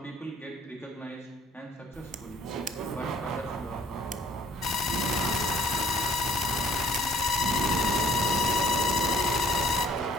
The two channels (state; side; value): normal; both; correlation 0.58